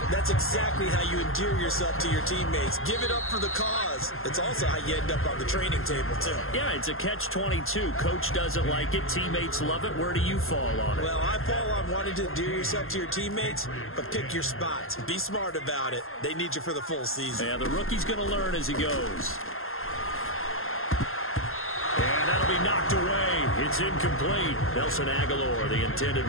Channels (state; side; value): late; right; 0.61 ms